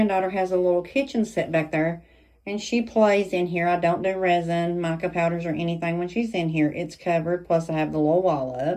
has a little kitchen set back there, and she plays in here. I don't do resin, mica powders, or anything when she's in here. It's covered, plus I have the little wall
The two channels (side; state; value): both; identical; correlation 1.00